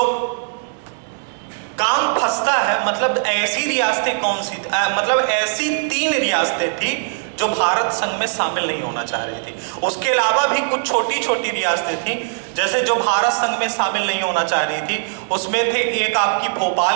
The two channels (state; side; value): silent; left; 66 dB below the other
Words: काम फंसता है, मतलब ऐसी रियासतें कौन सी, मतलब ऐसी 3 रियासतें थी जो भारत संघ में शामिल नहीं होना चाह रही थी। उसके अलावा भी कुछ छोटी छोटी रियासतें थी जैसे जो भारत संघ में शामिल नहीं होना चाह रही थी। उसमें थे एक आपकी